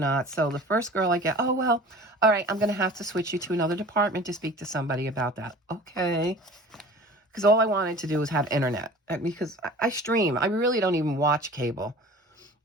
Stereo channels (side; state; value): both; normal; correlation 0.43